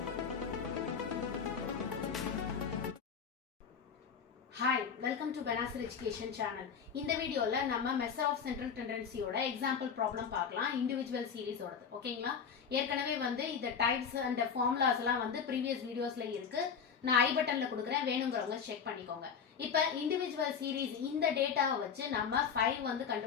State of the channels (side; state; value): right; quieter; 6.7 dB